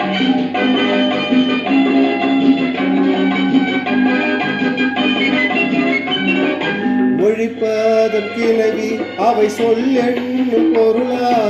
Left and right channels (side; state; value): both; identical; correlation 1.00